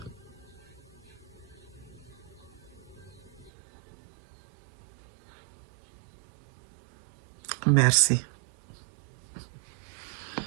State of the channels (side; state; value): left; drops out; at 3.5 s